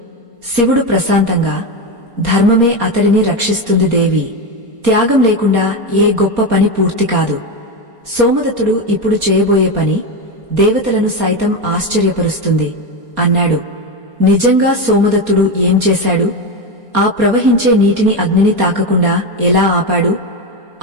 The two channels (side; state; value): left; late; 4.3 ms